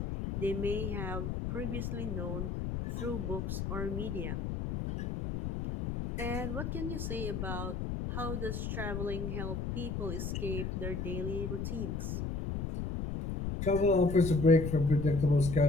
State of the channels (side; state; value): left; noise; rumble, 3 dB below the sound